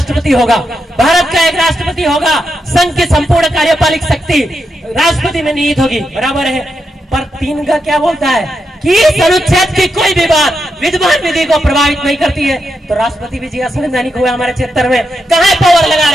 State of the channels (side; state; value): both; normal; correlation 0.85